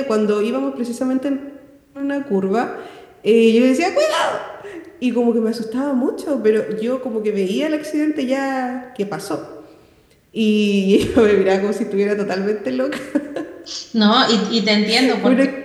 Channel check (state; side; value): identical; both; correlation 1.00